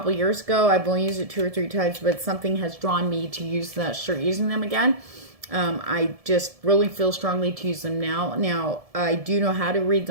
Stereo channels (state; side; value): late; left; 1.7 ms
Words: years ago. I've only used it 2 or 3 times, but something has drawn me to start using them again. I just really feel strongly to use them now. Now, I do know how to read